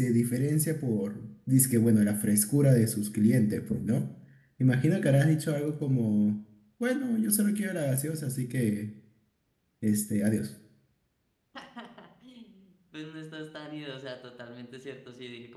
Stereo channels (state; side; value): identical; both; correlation 1.00